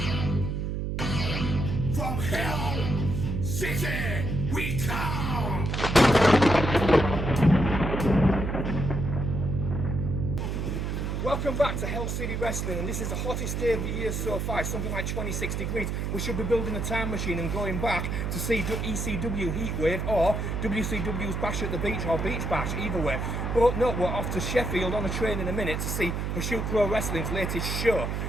From Hell City we come! Welcome back to Hell City Wrestling, and this is the hottest day of the year so far. It's something like 26 degrees. We should be building a time machine and going back to see ECW Heatwave or WCW's Bash at the Beach or Beach Bash, either way. But no, we're off to Sheffield on a train in a minute to see Pursuit Pro Wrestling's latest show.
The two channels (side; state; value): right; noise; hum, 2 dB below the sound